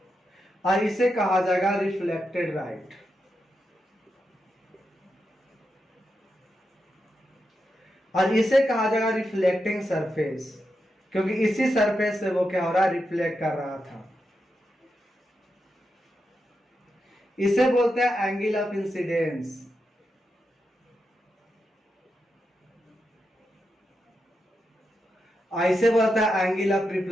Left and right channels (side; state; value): both; normal; correlation 0.86